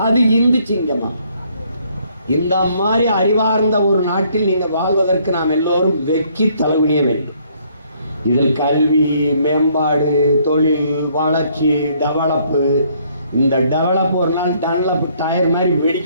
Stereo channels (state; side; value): inverted; both; correlation -0.66